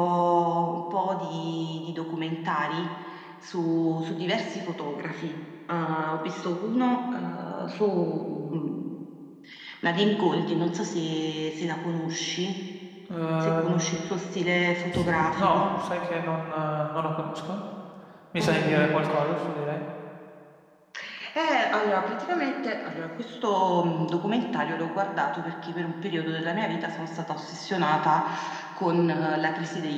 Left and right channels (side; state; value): both; identical; correlation 1.00